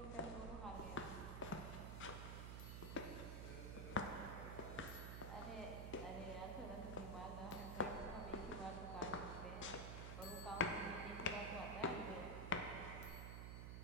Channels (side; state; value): right; noise; hum, 4 dB below the sound